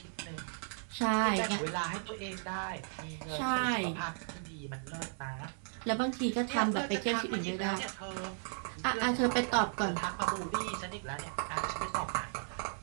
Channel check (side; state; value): left; silent; 54 dB below the other